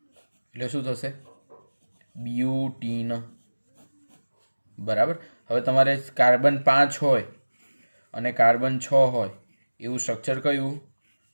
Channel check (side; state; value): both; inverted; correlation -1.00